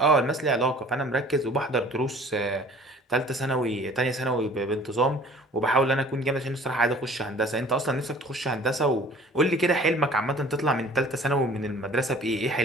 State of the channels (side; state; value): both; normal; correlation 0.49